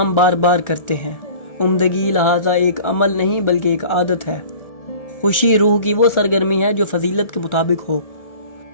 بار بار کرتے ہیں۔ عمدگی لہٰذا ایک عمل نہیں بلکہ ایک عادت ہے۔ خوشی روح کی وہ سرگرمی ہے جو فضیلت کے مطابق ہو۔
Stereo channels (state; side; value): late; right; 1.4 ms